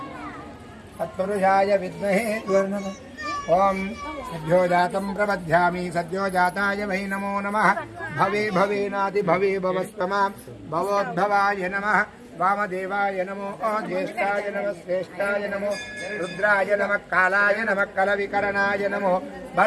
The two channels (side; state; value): both; identical; correlation 1.00